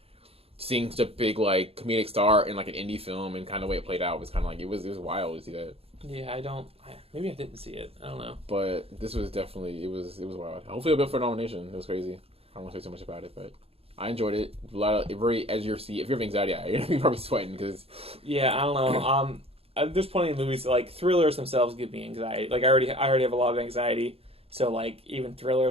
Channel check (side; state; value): left; late; 0.28 ms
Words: seeing such a big like comedic star in like an indie film and kind of the way it played out was kind of like it was wild to see that. Yeah, maybe I didn't see it. I don't know. But this was definitely, it was wild. Hopefully it'll be up for a nomination. It was crazy. I don't want to say too much about it, but I enjoyed it. A lot of, very edge of your seat. If you have anxiety, you're going to be probably sweating because... Yeah, I don't know. There's plenty of movies, like, thrillers themselves give me anxiety. Like, I already have a lot of anxiety, so, like, even